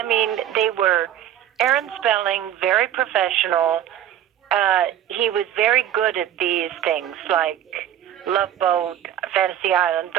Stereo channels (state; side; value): quieter; left; 10.9 dB